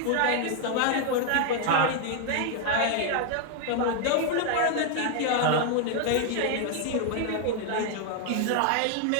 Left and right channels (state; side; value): different; both; correlation 0.00